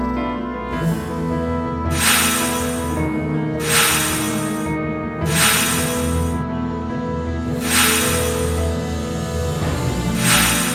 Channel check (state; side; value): identical; both; correlation 1.00